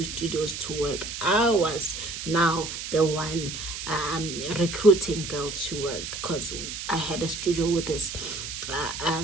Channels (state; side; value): noise; right; hiss, 7 dB below the sound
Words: studios to work. I was now the one recruiting girls to work, because I had a studio with this